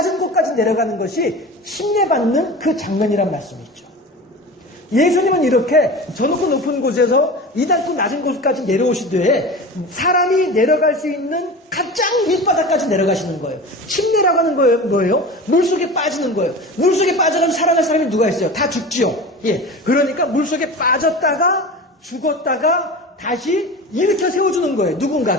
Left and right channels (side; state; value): both; normal; correlation 0.32